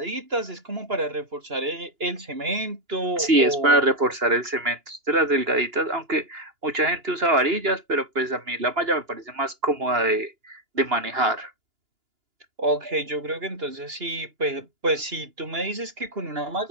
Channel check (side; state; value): left; late; 2.9 ms